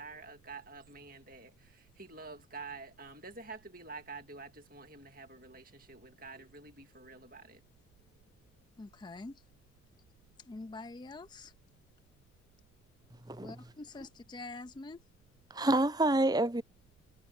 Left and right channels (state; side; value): noise; right; rumble, 30 dB below the sound